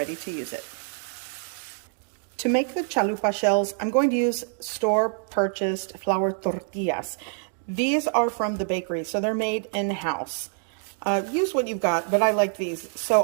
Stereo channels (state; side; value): silent; left; 59 dB below the other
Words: to use it. To make the chalupa shells, I'm going to use store-purchased flour tortillas. These are from the bakery, so they're made in-house. Use what you've got, but I like these. So